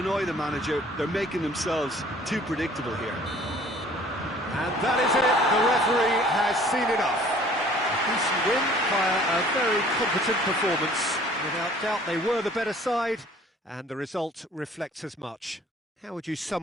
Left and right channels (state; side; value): normal; both; correlation 0.53